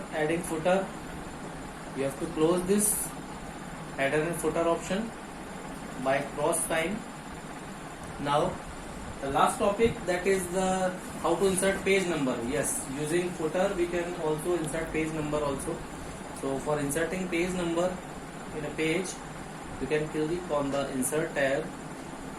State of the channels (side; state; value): both; identical; correlation 1.00